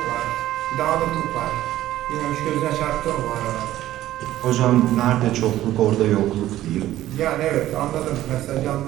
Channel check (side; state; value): left; quieter; 14.1 dB